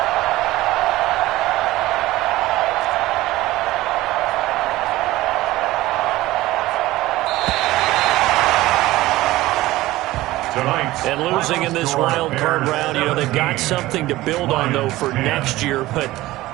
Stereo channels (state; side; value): quieter; left; 17.4 dB